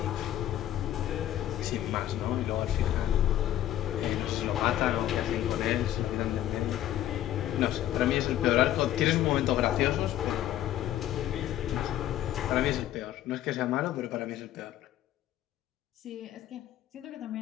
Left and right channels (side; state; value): right; quieter; 12.5 dB